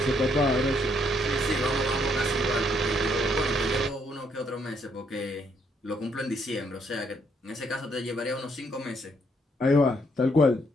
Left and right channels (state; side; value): normal; both; correlation 0.71